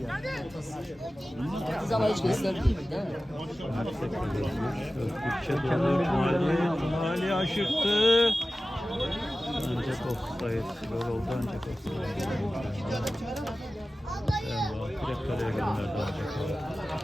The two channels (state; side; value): normal; both; correlation 0.96